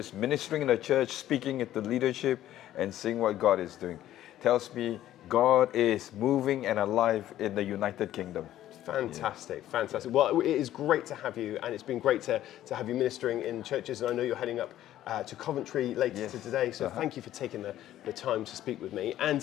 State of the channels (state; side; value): quieter; right; 12.9 dB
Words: ministering in the church, speaking at the leadership, and seeing what God is doing tells me God is moving and alive in the United Kingdom. Fantastic, fantastic. Well, it is great to have you, and it's been great to have you ministering in churches, and I know you're heading up to Coventry later today, so thank you for taking the time to speak with me.